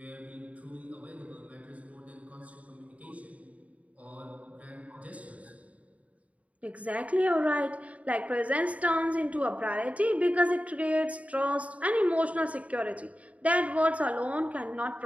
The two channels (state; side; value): late; left; 0.068 ms